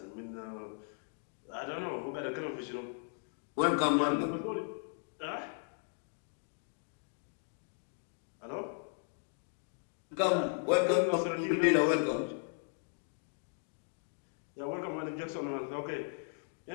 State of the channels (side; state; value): right; silent; 53 dB below the other